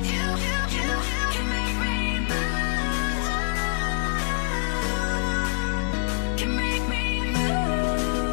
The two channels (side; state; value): right; silent; digital silence